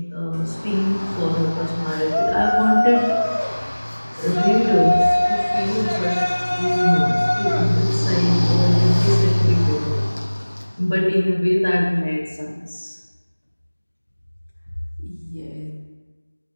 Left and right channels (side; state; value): both; inverted; correlation -1.00